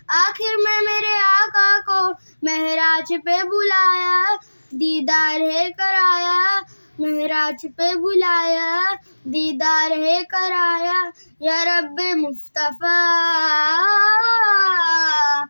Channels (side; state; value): both; inverted; correlation -1.00